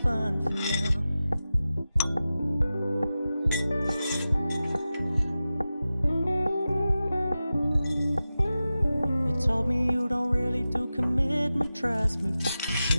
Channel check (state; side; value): inverted; both; correlation -0.94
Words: for now. You told me you don't really do commitment, trust me,